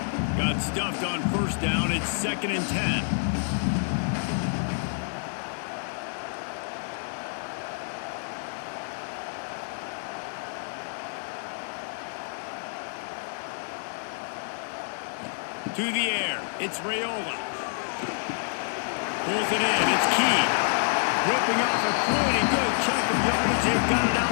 Got stuffed on 1st down. It's 2nd and 10. To the air. It's Raiola. Pulls it in. It's Key. Ripping off a pretty good chunk of yardage. They've got it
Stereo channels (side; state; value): right; silent; digital silence